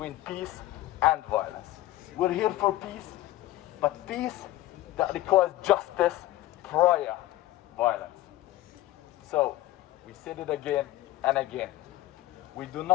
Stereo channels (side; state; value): right; quieter; 15.7 dB